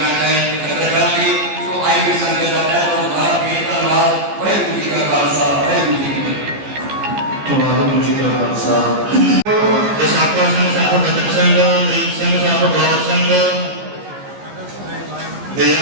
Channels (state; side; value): late; left; 15 ms